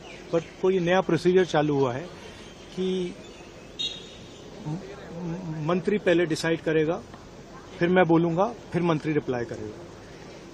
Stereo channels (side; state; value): both; identical; correlation 1.00